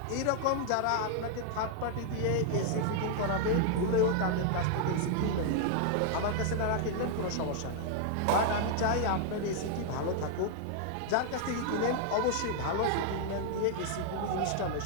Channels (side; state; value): both; different; correlation 0.00